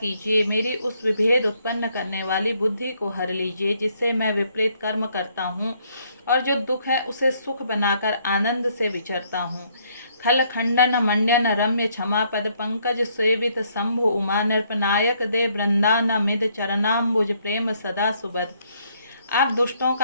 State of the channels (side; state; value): both; inverted; correlation -0.69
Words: मेरी उस विभेद उत्पन्न करने वाली बुद्धि को हर लीजिए, जिससे मैं विपरीत कर्म करता हूँ और जो दुख है उसे सुख बनाकर आनंद से विचरता हूँ। खल खंडन मंडन रम्य क्षमा पद पंकज सेवित शंभु उमा। नृपनायक दे वृंदानमिद चरणाम्बुज प्रेम सदा सुबद। आप दुष्टों